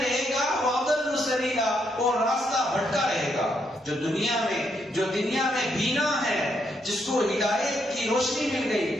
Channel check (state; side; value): normal; both; correlation 0.77